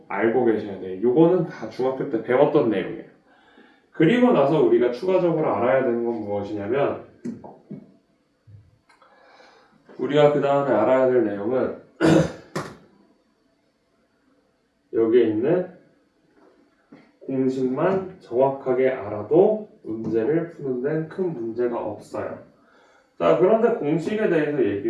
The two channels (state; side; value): identical; both; correlation 1.00